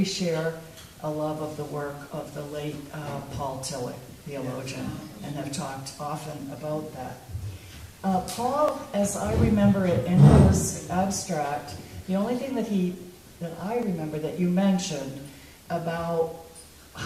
share a love of the work of the late Paul Tillich, theologian, and have talked often about that. Paul, as I remember it in his abstract, the only thing that I remember that you mentioned about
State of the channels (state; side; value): identical; both; correlation 1.00